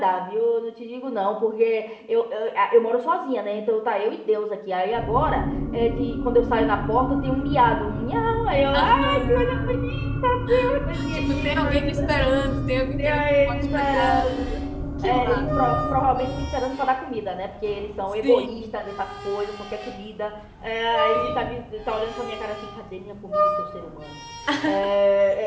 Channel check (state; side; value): identical; both; correlation 1.00